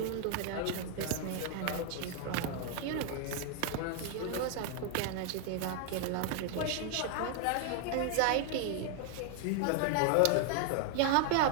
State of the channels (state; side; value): different; both; correlation 0.00